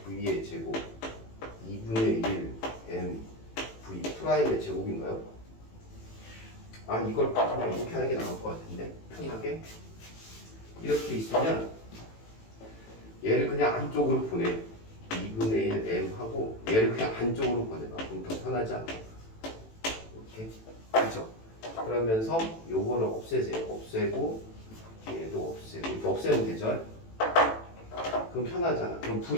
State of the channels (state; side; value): late; right; 18 ms